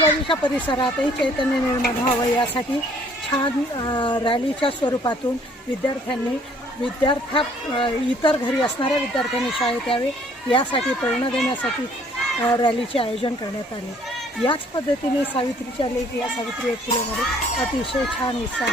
परिसरातही चैतन्य निर्माण व्हावं यासाठी छान रॅलीच्या स्वरूपातून विद्यार्थ्यांनी इतर घरी असणाऱ्या विद्यार्थ्यांनी शाळेत यावे यासाठी प्रेरणा देण्यासाठी रॅलीचे आयोजन करण्यात आले। याच पद्धतीने सावित्रीच्या लेक या सावित्री फुलेमध्ये अतिशय छान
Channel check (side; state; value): both; normal; correlation 0.60